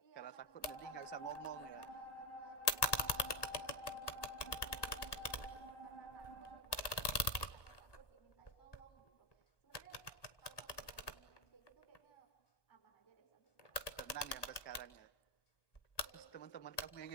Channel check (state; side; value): late; right; 1.2 ms